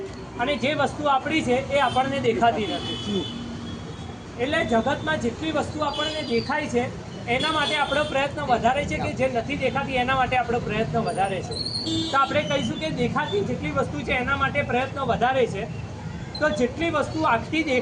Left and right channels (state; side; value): identical; both; correlation 1.00